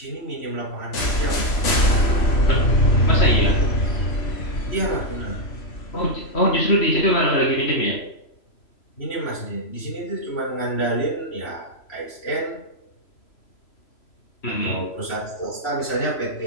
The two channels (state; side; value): late; right; 3.0 ms